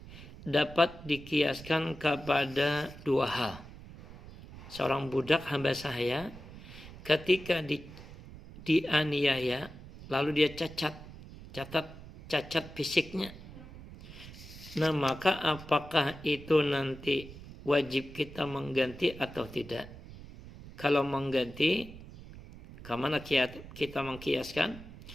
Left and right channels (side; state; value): right; noise; rumble, 16 dB below the sound